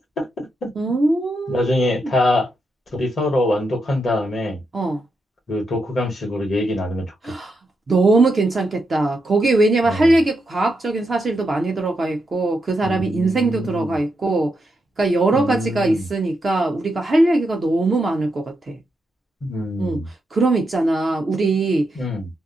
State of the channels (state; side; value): normal; both; correlation 0.83